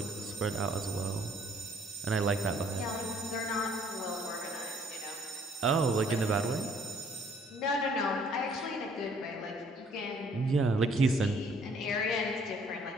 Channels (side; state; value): both; normal; correlation 0.61